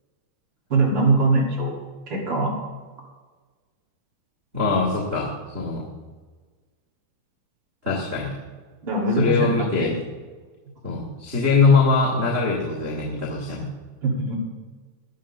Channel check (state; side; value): late; left; 2.9 ms